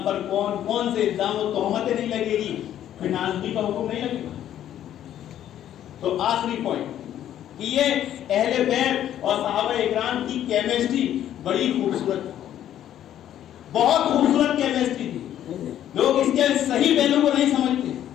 پر کون کون سے الزام و تہمتیں نہیں لگے گی، پھر نازلی کا حکم نہیں لگے گا۔ تو آخری پوائنٹ کہ یہ اہل بیت اور صحابہ اکرام کی کیمسٹری بڑی خوبصورت، بہت خوبصورت کیمسٹری تھی۔ لوگ اس کے صحیح پہلو کو نہیں سمجھتے۔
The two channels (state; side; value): quieter; right; 11.2 dB